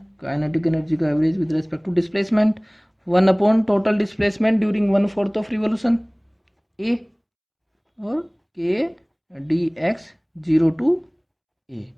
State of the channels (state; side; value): identical; both; correlation 1.00